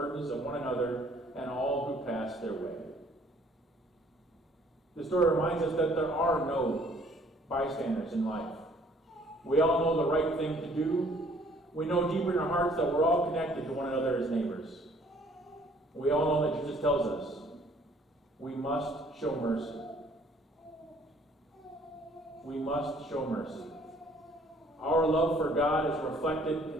of one another and all who pass their way. The story reminds us that there are no bystanders in life. We all know the right thing to do. We know deeper in our hearts that we're all connected to one another as neighbors. We all know that Jesus tells us we must show mercy. We must show mercy. Our love for God is reflected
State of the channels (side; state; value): both; normal; correlation 0.59